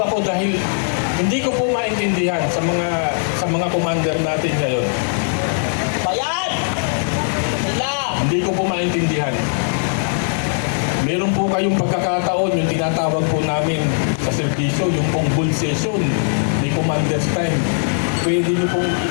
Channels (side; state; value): right; silent; 64 dB below the other